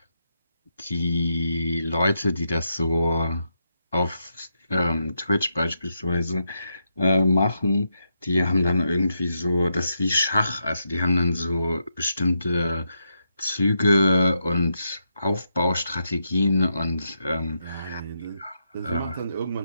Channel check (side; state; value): both; inverted; correlation -0.83